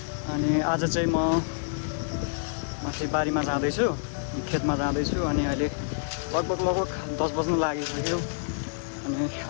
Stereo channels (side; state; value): right; silent; 58 dB below the other